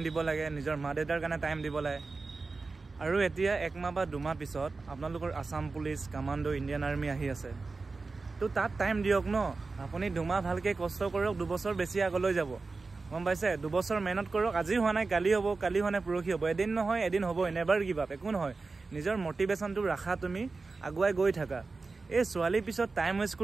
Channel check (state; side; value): quieter; left; 4.0 dB